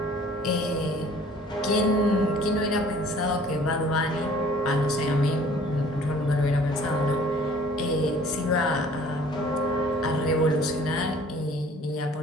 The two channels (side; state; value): both; normal; correlation 0.52